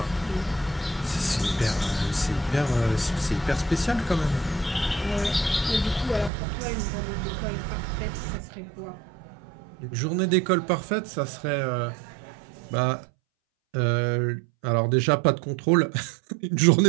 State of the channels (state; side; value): drops out; left; at 6.3 s